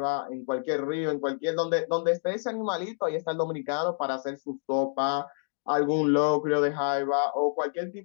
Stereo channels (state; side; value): silent; right; 59 dB below the other